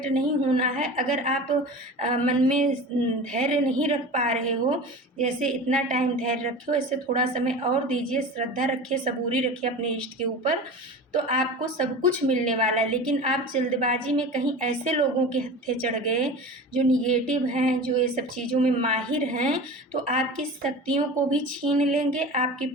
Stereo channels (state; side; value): normal; both; correlation 0.33